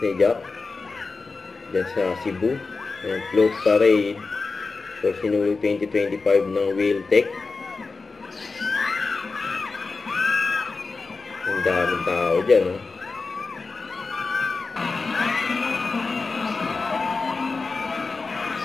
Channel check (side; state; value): right; quieter; 4.1 dB